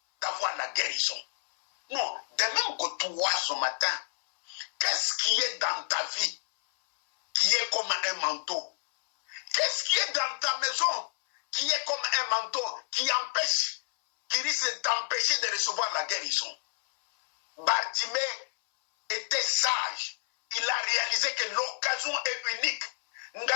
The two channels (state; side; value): silent; right; 58 dB below the other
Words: d'avoir la guérison. Non, de même que toi ce matin, qu'est-ce qui est dans ta vie qui est comme un manteau? Qu'est-ce qui est dans ta maison qui est comme un manteau qui empêche, qui risque d'empêcher de recevoir la guérison? Bartimée était sage. Il a réalisé que l'occasion est unique.